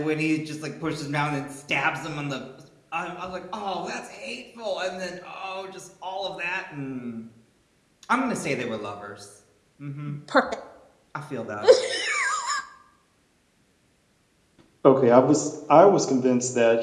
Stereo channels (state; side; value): identical; both; correlation 1.00